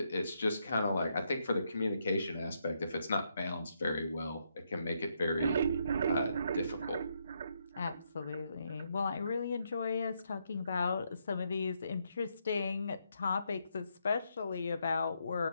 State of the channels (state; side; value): inverted; both; correlation -0.78